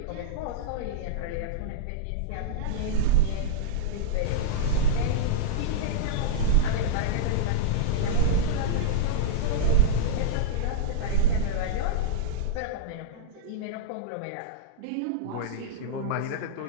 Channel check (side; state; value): both; different; correlation -0.03